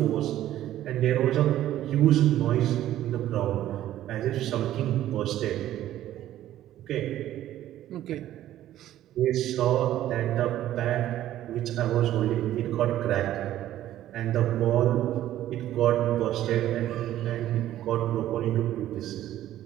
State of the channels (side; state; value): left; quieter; 13.0 dB